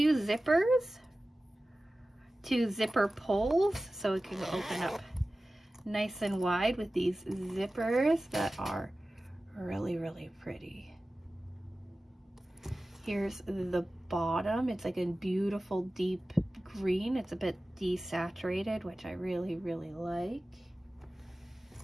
zippers, 2 zipper pulls, so it can open up nice and wide with these zippers that are really, really pretty. Here's the bottom. It's like a beautiful deep green. It's a bit desaturated, which I really, really like.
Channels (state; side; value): normal; both; correlation 0.96